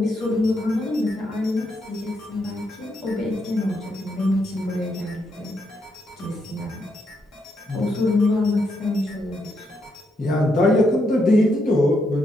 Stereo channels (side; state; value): both; normal; correlation 0.78